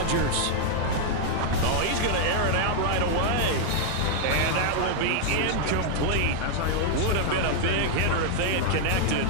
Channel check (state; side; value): different; both; correlation -0.01